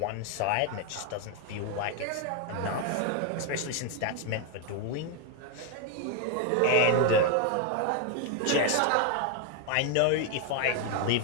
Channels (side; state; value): both; different; correlation 0.00